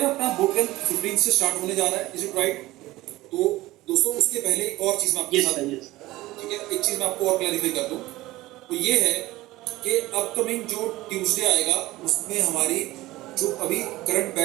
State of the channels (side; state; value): left; quieter; 18.1 dB